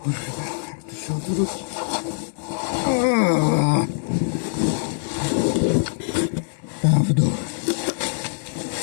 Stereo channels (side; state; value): right; silent; digital silence